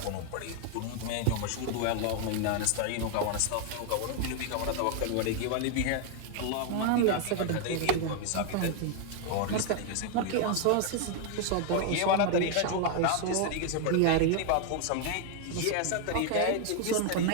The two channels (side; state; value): both; different; correlation 0.00